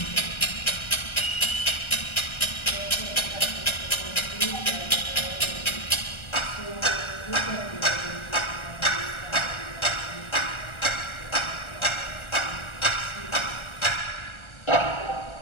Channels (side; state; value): right; late; 1.3 ms